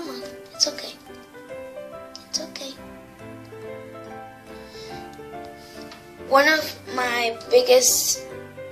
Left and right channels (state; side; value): identical; both; correlation 1.00